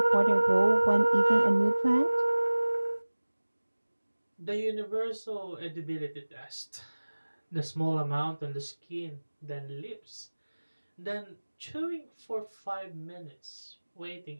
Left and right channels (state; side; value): inverted; both; correlation -1.00